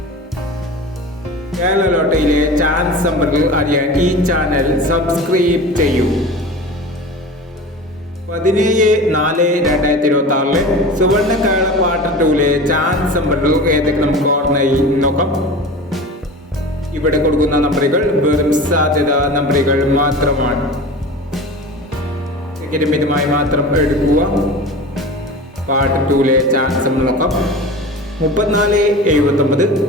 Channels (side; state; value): both; normal; correlation 0.34